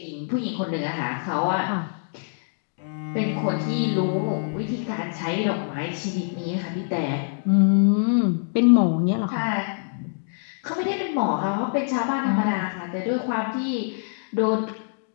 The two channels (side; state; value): right; silent; digital silence